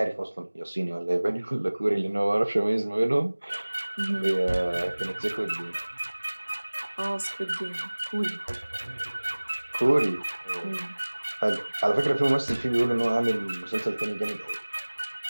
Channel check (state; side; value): inverted; both; correlation -1.00